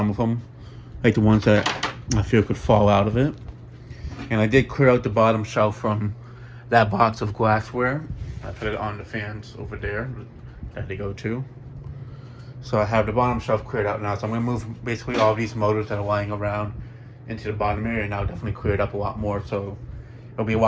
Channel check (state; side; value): identical; both; correlation 1.00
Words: of them, like the ones that I feel could fall out of it. And I did clear out the bottom shelf from that box of glassware. I put it on the fans over there that they go to. So I have the bottom shelf cleared out now. So I'm gonna move basically all these motors that are lying around into the bottom area, and I'll definitely clear it up a lot more. So it'll be a